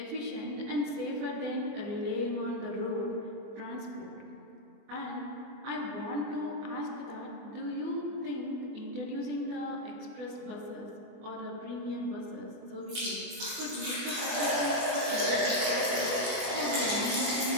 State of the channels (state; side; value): late; left; 24 ms